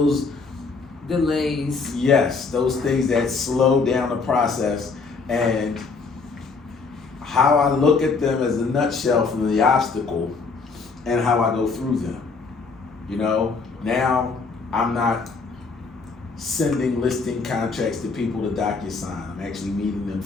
delays. Yes, those things that slow down the process, and how I look at them as a nutshell from the obstacle and how I go through them. You know, now I'm not sending listing contracts to people to DocuSign. I'm actually meeting them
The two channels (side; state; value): right; quieter; 4.5 dB